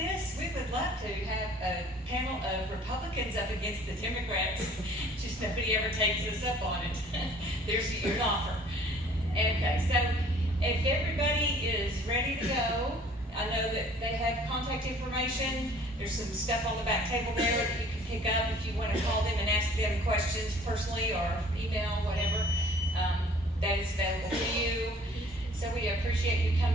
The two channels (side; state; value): both; normal; correlation 0.53